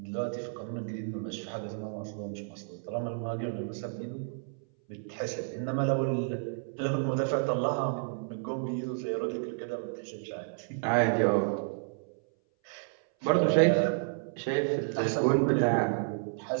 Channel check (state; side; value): silent; left; 57 dB below the other